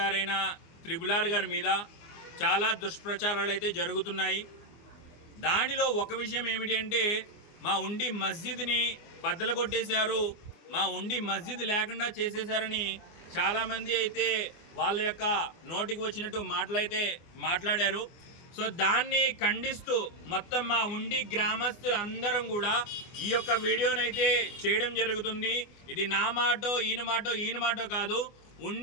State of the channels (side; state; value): right; late; 24 ms